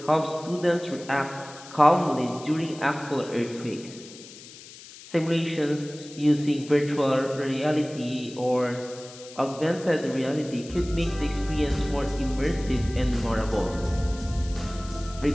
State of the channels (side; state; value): left; noise; hiss, 17 dB below the sound